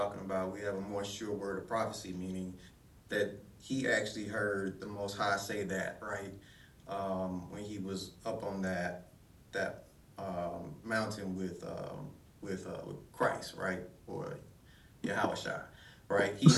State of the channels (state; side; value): identical; both; correlation 1.00